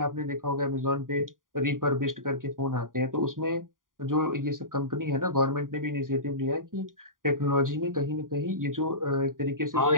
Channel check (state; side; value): late; left; 0.90 ms